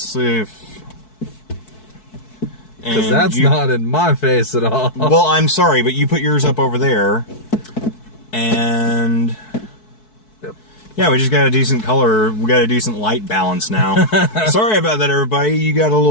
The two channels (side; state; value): right; late; 4.6 ms